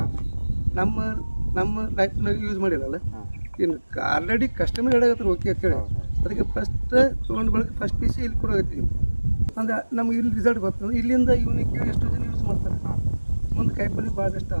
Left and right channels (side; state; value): both; inverted; correlation -1.00